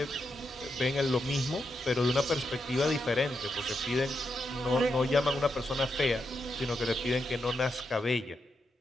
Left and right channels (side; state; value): both; normal; correlation 0.84